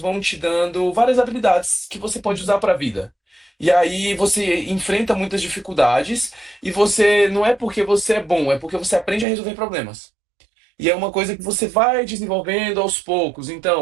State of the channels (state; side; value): drops out; left; at 9.2 s